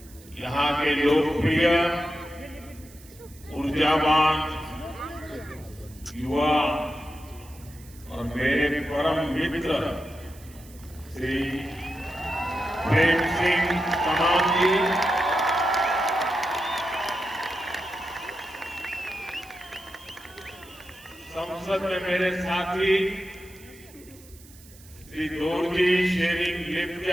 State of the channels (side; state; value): right; noise; hiss, 23 dB below the sound